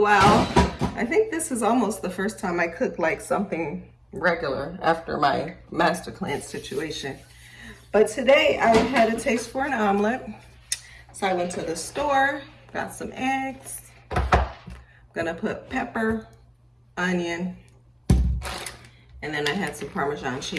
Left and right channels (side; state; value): both; identical; correlation 1.00